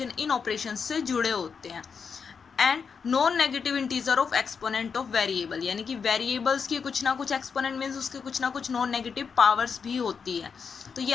इन ऑपरेशन से जुड़े होते हैं. And non negative integer of exponent of variable, यानी कि वेरिएबल्स की कुछ ना कुछ एक्सपोनेंट मीन्स उसके कुछ ना कुछ नॉन नेगेटिव पावर्स भी होती है. तो ये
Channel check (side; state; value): right; quieter; 6.0 dB